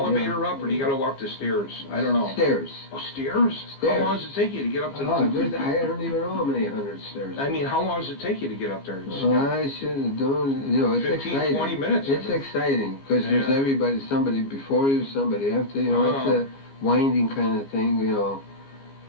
up, or do you got to walk the stairs? I don't know. Stairs. Oh, stairs? How long does it take you to get up to the... I don't even know how many hundred stairs. I mean, how long does it take you to get up there? I should have done, you know, it's 15, exciting. 20 minutes. It's exciting, because there's everybody, somebody before you, somebody after you, know, it's a winding kind of thing, you know.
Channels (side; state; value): right; late; 15 ms